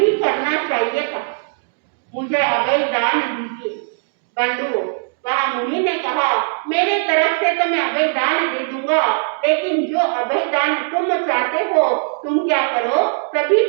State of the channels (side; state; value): left; silent; digital silence